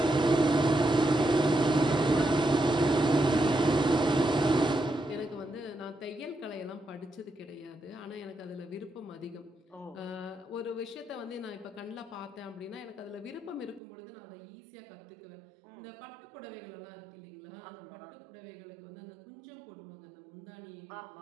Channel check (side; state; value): left; drops out; at 13.8 s